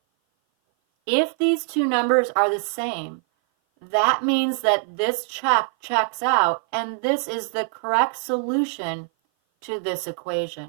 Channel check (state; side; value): silent; left; 57 dB below the other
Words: If these two numbers are the same, that means that this checks out, and this is the correct solution to this